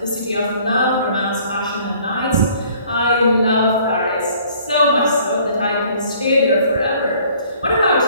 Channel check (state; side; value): inverted; both; correlation -0.57